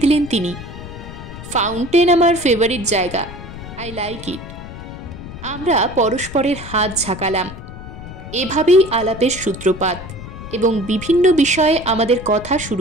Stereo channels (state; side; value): noise; left; rumble, 13 dB below the sound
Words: দিলেন তিনি। ফাউন্টেন আমার ফেভারিট জায়গা, আই লাইক ইট। আমরা পরস্পরের হাত ঝাঁকালাম। এভাবেই আলাপের সূত্রপাত, এবং বিভিন্ন বিষয়ে আমাদের কথা